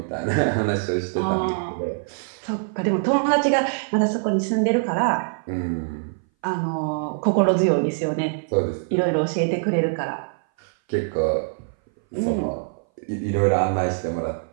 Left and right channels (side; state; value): left; silent; 59 dB below the other